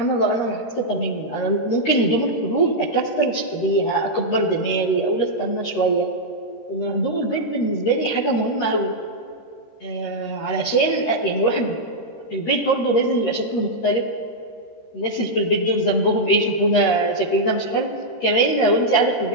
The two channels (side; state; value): right; late; 13 ms